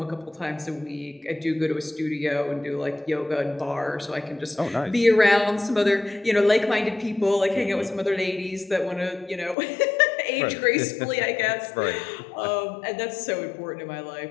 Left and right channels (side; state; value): right; drops out; at 9.6 s